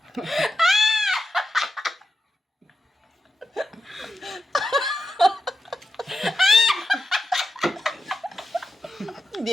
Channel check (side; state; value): both; normal; correlation 0.89